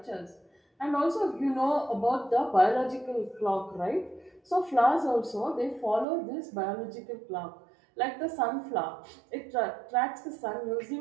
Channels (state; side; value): drops out; left; at 6.1 s